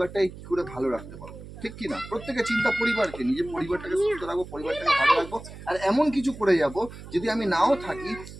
কি করে ভালো রাখতে পারবো, ঠিক কিনা? প্রত্যেকের চিন্তা পরিবারকে নিয়ে, যে পরিবারটাকে সুস্থ রাখবো, পরিবারটাকে ভালো রাখবো, আর এমন কিছু করে যাব যদি আমি নাও থাকি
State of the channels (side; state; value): right; noise; hum, 14 dB below the sound